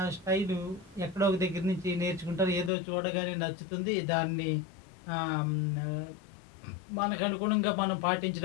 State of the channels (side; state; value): right; drops out; at 2.7 s